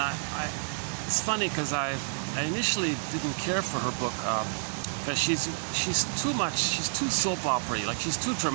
it's funny because I initially didn't care for her book because she's too soap opera-y, like she's too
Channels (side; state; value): left; silent; 58 dB below the other